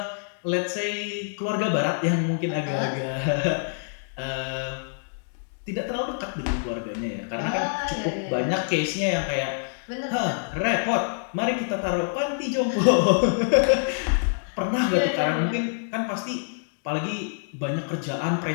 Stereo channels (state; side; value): silent; right; digital silence